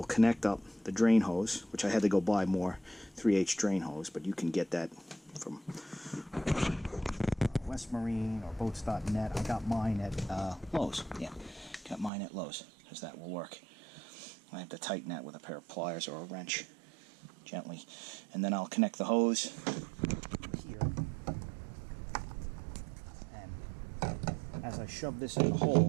connect up the drain hose, which I had to go buy more 3H drain hose, but you can get that from West Marine or boats.net. I got mine at Lowe's. Yeah, got mine at Lowe's, because that will work. I have to tighten that with a pair of pliers or a wrench gently. And then I'll connect the hose here. And as I shove this in the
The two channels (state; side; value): drops out; left; at 12.1 s